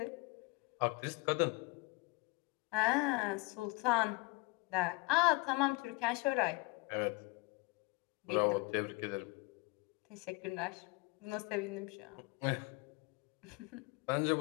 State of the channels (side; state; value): right; quieter; 26.6 dB